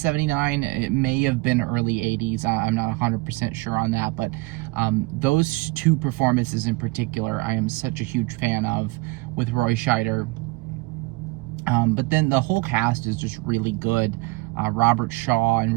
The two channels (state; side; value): quieter; left; 23.3 dB